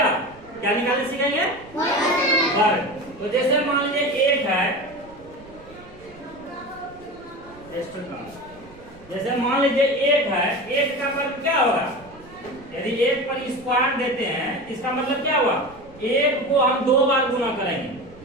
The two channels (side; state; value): right; noise; rumble, 23 dB below the sound